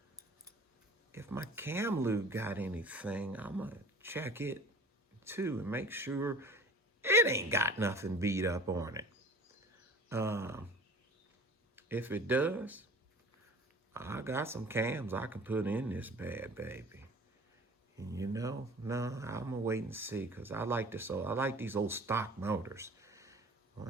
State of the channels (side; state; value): both; normal; correlation 0.43